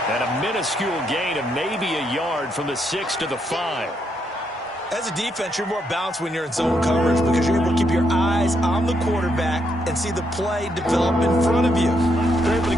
And a minuscule gain of maybe a yard from the 6 to the 5. As a defense, you're more balanced when you're in zone coverage because you're able to keep your eyes on the quarterback and see the play develop in front of you. They're able to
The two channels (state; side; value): normal; both; correlation 0.77